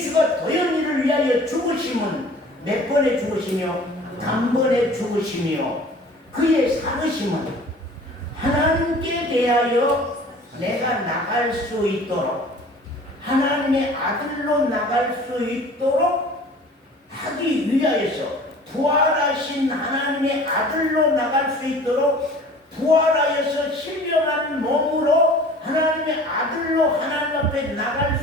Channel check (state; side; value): normal; both; correlation 0.46